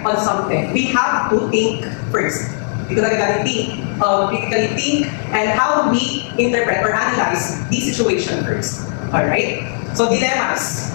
on something, we have to think first. Dito talaga think, critically think, and how we interpret or analyze the situation first. Alright? So dilemmas.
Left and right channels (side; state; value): right; silent; digital silence